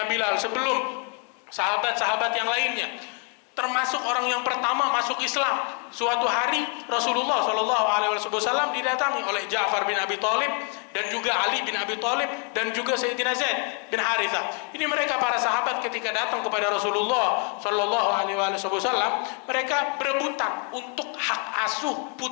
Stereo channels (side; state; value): right; quieter; 39.7 dB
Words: Bilal, sebelum sahabat-sahabat yang lainnya. Termasuk orang yang pertama masuk Islam. Suatu hari Rasulullah SAW didatangi oleh Ja'far bin Abi Thalib dan juga Ali bin Abi Thalib dan juga Sayyidina Zaid bin Harithah. Ini mereka para sahabat ketika datang kepada Rasulullah SAW, mereka berebutan untuk hak asuh